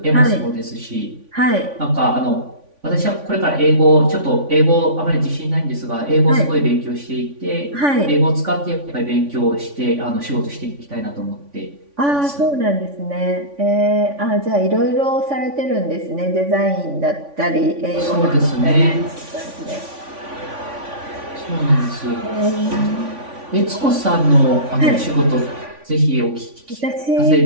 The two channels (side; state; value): left; late; 3.5 ms